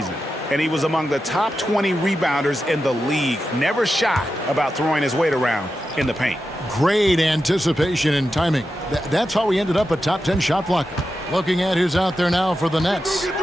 and he was among the top 20 rebounders in the league. Never shy about throwing his weight around in the paint. Great anticipation and timing. That's how he ended up a top 10 shot blocker. Looking at who's out there now for the Nets.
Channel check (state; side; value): normal; both; correlation 0.90